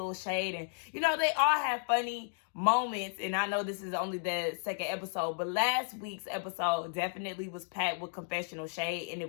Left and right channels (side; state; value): right; silent; digital silence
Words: shade and, you know, they all have funny moments. And I know this is only the second episode, but last week's episode definitely was packed with confessional shade and